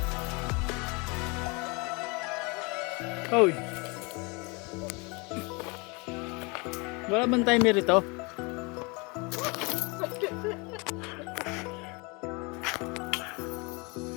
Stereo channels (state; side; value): quieter; right; 29.2 dB